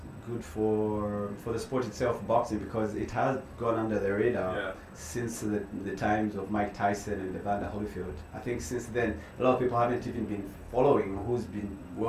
good for the sport itself, boxing, because it has gone under the radar since the times of Mike Tyson and Evander Holyfield. I think since then, a lot of people haven't even been following who's been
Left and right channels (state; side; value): identical; both; correlation 1.00